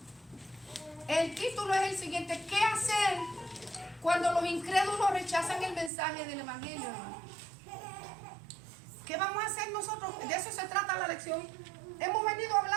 El título es el siguiente: ¿qué hacer cuando los incrédulos rechazan el mensaje del evangelio, hermano? ¿Qué vamos a hacer nosotros? De eso se trata la lección. Hemos venido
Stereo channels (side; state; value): left; drops out; at 5.9 s